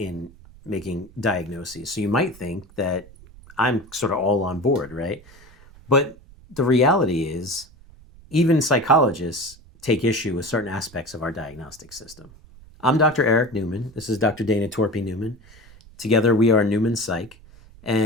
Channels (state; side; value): noise; right; rumble, 23 dB below the sound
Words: making diagnoses. So you might think that I'm sort of all on board, right? But the reality is, even psychologists take issue with certain aspects of our diagnostic system. I'm Dr. Eric Newman. This is Dr. Dana Torpy Newman. Together we are Newman Psych.